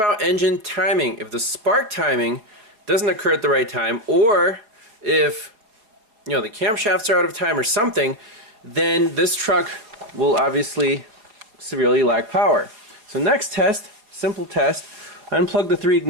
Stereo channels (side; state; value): left; late; 4.7 ms